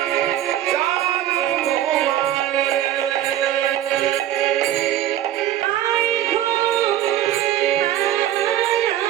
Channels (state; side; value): quieter; left; 12.4 dB